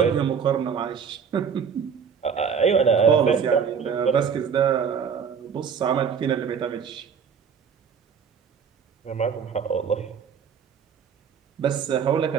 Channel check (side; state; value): left; quieter; 6.8 dB